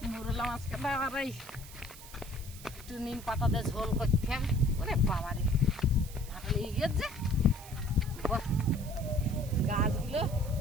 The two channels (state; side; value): noise; right; hiss, 17 dB below the sound